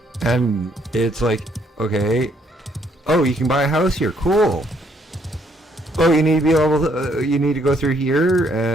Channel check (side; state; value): both; normal; correlation 0.69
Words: And it's like, okay, oh, you can buy a house here, cool. Oh, you need to be able to, you need to go through here